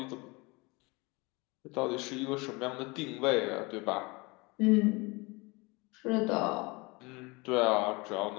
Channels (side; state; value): right; quieter; 25.9 dB